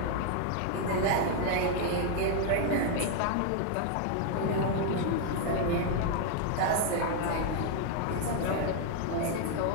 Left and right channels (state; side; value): different; both; correlation 0.00